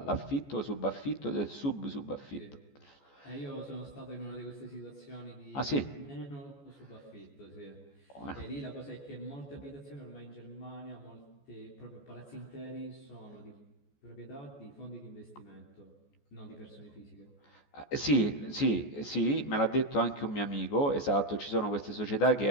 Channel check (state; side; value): late; right; 14 ms